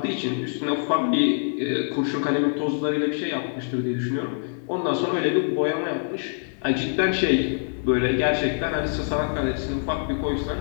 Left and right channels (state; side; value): silent; right; digital silence